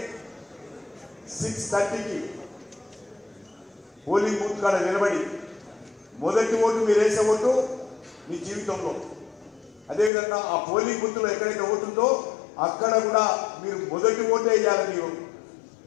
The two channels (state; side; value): drops out; right; at 10.1 s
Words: 6:30కి పోలింగ్ బూత్ కాడ నిలబడి మొదటి ఓటు మీరు వేసే ఓటు మీ జీవితంలో, అదేవిధంగా ఆ పోలింగ్ బూత్లో ఎక్కడైతే ఓటు ఉందో అక్కడ కూడా మీరు మొదటి ఓటే వేయాలి. మీరు